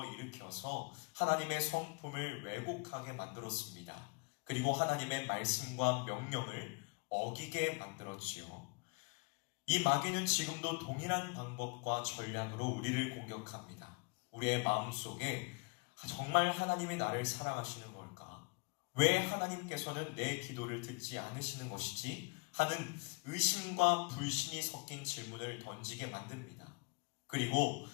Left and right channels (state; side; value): quieter; right; 32.0 dB